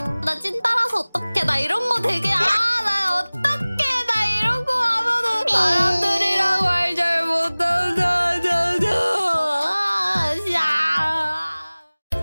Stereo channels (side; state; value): both; inverted; correlation -1.00